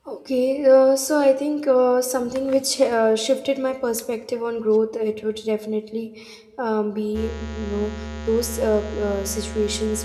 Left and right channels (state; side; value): identical; both; correlation 1.00